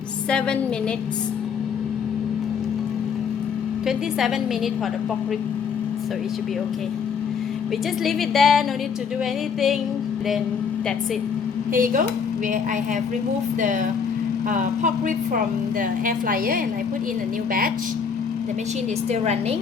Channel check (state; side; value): quieter; right; 6.4 dB